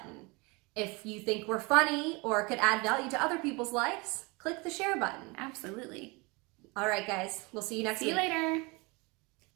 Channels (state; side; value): quieter; left; 27.3 dB